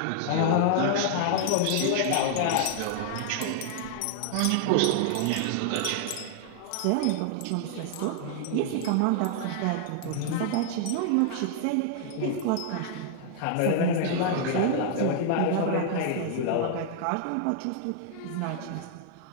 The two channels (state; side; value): different; both; correlation 0.00